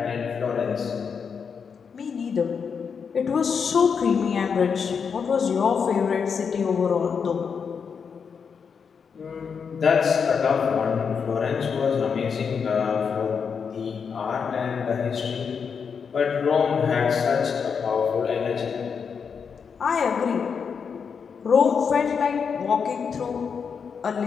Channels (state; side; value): quieter; right; 6.3 dB